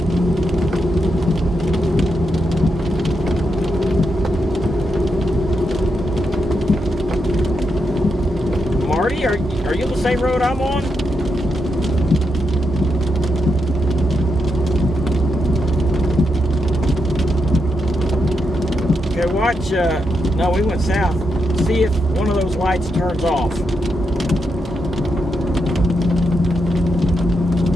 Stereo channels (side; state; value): both; normal; correlation 0.83